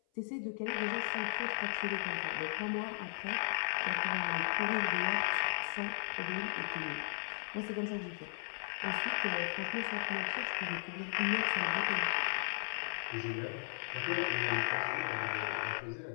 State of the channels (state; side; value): silent; right; 54 dB below the other